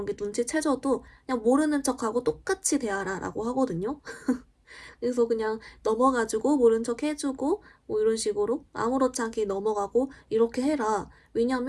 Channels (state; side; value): identical; both; correlation 1.00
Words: 게 눈치채져도 그냥 모르는 척하고 똑같이 대하라 라고 하거든요. 그래서 그냥 넘어가지고 모른 척 해주고 뭐 이런 식으로 아무렇지 않게 넘어가고 이렇게 해라.